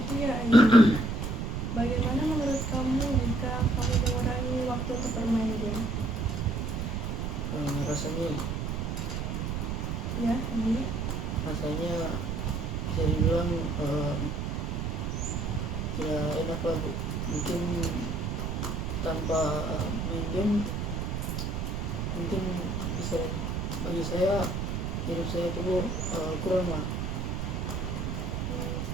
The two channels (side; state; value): right; noise; rumble, 2 dB below the sound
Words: ya Ayu. Bagaimana menurut kamu jika kamu mengurangi waktu untuk bermain game? Rasanya Ya, ini bisa dibilang ya enak lah Bu. Mungkin tanpa main game mungkin bisa, bagi saya hidup saya itu Bu kurang lah.